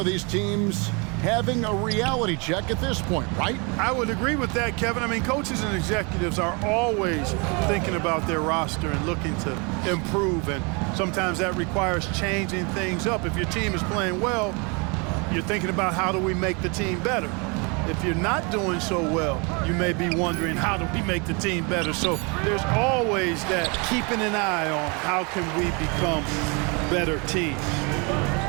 these teams having a reality check at this point, right? I would agree with that, Kevin. I mean, coaches and executives are always thinking about their roster and looking to improve, and sometimes that requires changing things up. If your team is playing well, you're thinking about how do we make the team better. If you're not doing so well, you may be wondering, how do we make the team better? So there's always that keeping an eye on how can we become better teams.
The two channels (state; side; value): quieter; left; 31.5 dB